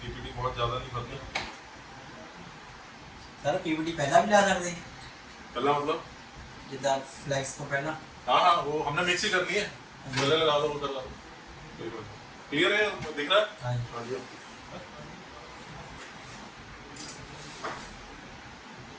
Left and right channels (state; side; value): identical; both; correlation 1.00